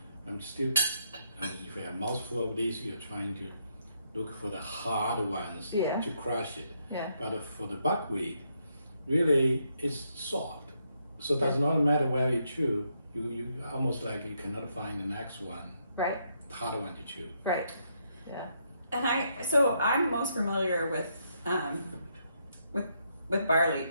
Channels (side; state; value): both; inverted; correlation -0.77